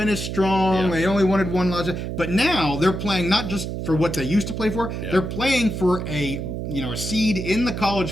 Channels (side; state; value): right; noise; hum, 5 dB below the sound